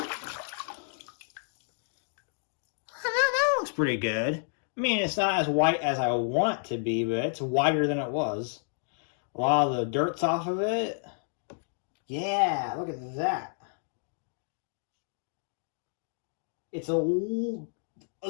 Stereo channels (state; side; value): silent; right; digital silence